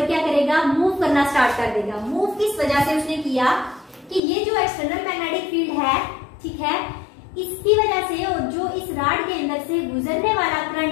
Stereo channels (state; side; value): drops out; right; at 4.2 s